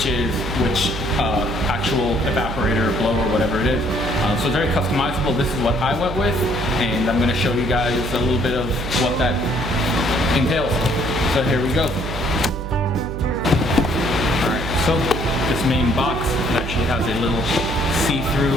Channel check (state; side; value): noise; right; hum, 6 dB below the sound